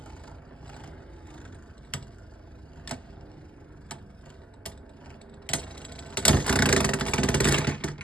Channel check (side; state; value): both; normal; correlation 0.66